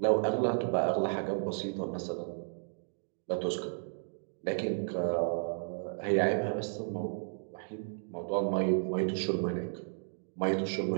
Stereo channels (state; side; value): silent; left; digital silence